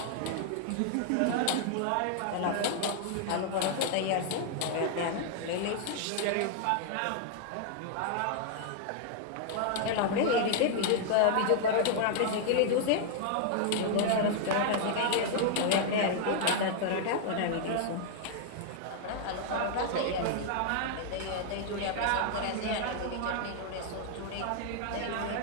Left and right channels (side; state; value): both; different; correlation 0.00